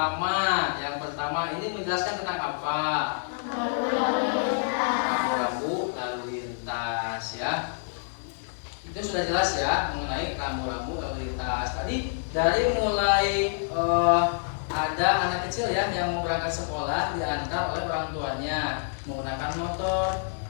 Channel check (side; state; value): right; silent; 60 dB below the other